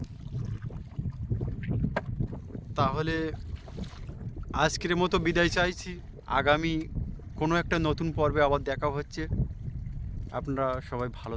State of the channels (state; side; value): identical; both; correlation 1.00